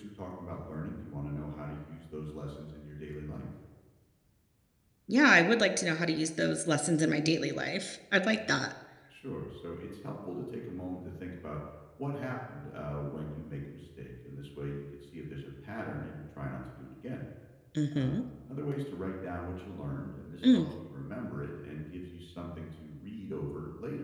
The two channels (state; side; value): identical; both; correlation 1.00